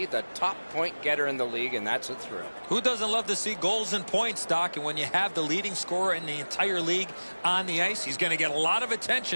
the top point getter in the league, and that's a thrill. Who doesn't love to see goals and points, Doc? And when you have the leading scorer in the entire league on the ice, he's going to get a lot of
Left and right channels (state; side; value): inverted; both; correlation -1.00